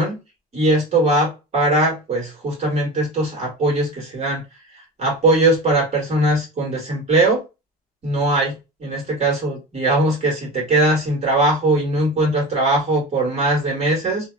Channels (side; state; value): both; normal; correlation 0.29